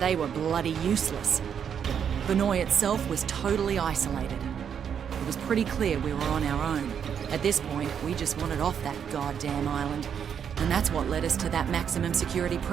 were bloody useless. Banoi itself was totally isolated. It was pretty clear we were on our own. At this point, we just wanted off that goddamn island. And that's what led us to that maximum security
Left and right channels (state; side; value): quieter; left; 7.9 dB